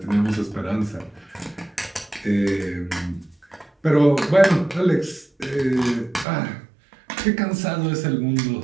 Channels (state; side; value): drops out; left; at 6.2 s